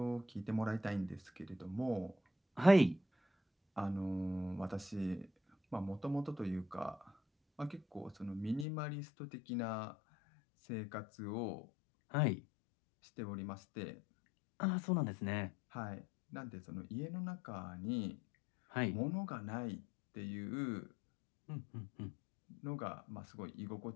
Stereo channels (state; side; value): drops out; right; at 8.7 s